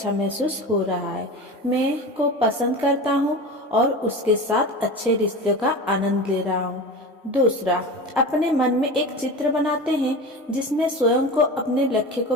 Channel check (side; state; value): both; normal; correlation 0.30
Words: महसूस हो रहा है। मैं को पसंद करता हूँ और उसके साथ अच्छे रिश्ते का आनंद ले रहा हूँ। दूसरा, अपने मन में एक चित्र बनाते हैं जिसमें स्वयं को अपने लक्ष्य को